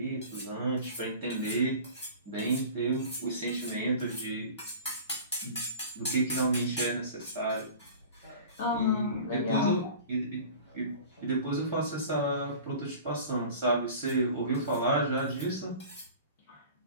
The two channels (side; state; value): both; inverted; correlation -0.40